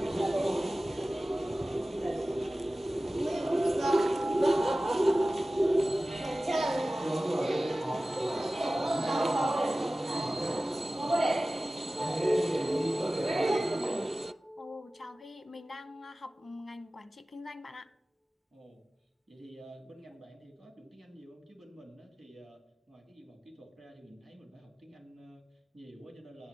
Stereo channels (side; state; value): both; normal; correlation 0.96